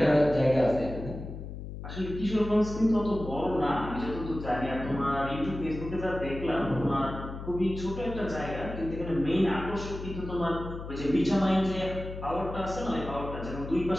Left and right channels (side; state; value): left; noise; hum, 9 dB below the sound